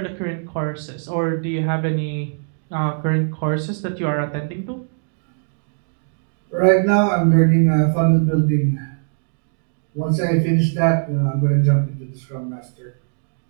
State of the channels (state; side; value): silent; left; digital silence